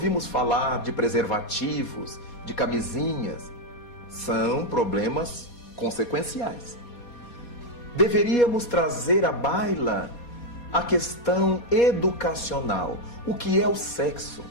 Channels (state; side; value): late; right; 4.2 ms